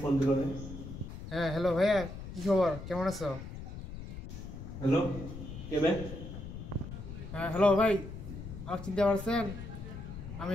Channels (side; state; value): left; noise; rumble, 10 dB below the sound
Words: ফোন দিল রে। হ্যাঁ হ্যালো ভাইয়া, কি খবর, কেমন আছো? হ্যালো, কে বে? হ্যাঁ হ্যালো ভাই, আমার চিনতে পারছেন? আমি